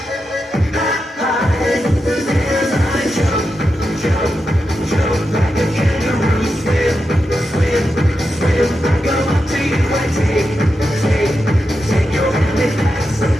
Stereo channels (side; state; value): both; normal; correlation 0.88